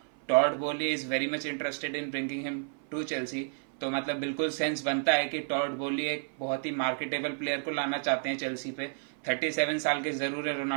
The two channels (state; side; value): silent; left; 57 dB below the other